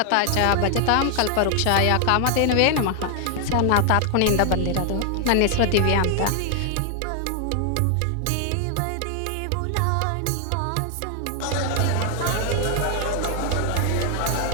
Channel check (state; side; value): different; both; correlation 0.00